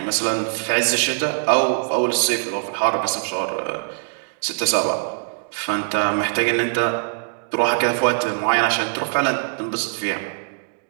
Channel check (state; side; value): silent; left; digital silence